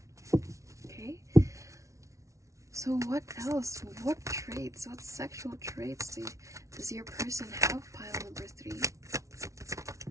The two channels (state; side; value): late; left; 0.15 ms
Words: Okay? So what else? What traits? What sexual traits does your person have, pile number 3?